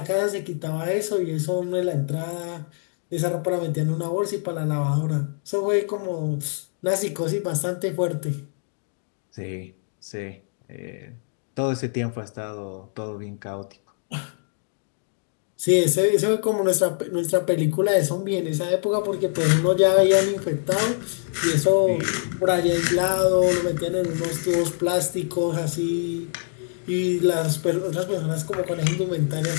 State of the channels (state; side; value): silent; right; 62 dB below the other